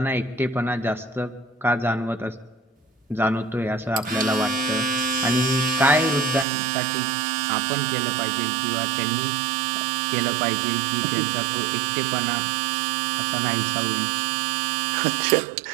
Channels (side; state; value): left; drops out; at 6.5 s